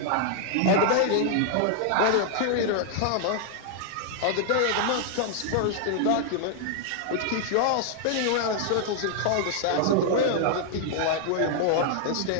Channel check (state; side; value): different; both; correlation 0.00